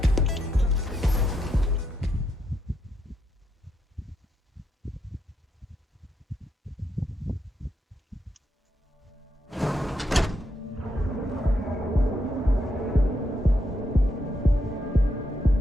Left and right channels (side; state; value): both; normal; correlation 0.80